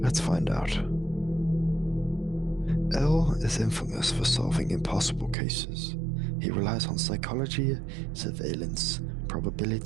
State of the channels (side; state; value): left; drops out; at 5.4 s